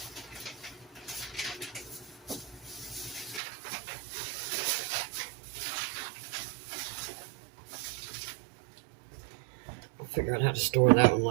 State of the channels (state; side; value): drops out; left; at 3.4 s